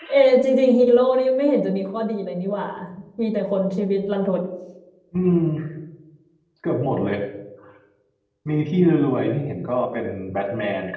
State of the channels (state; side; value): identical; both; correlation 1.00